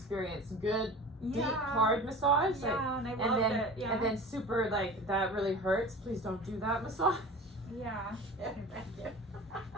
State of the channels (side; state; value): both; normal; correlation 0.37